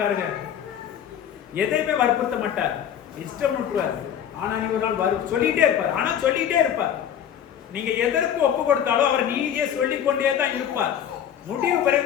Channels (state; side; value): quieter; right; 9.5 dB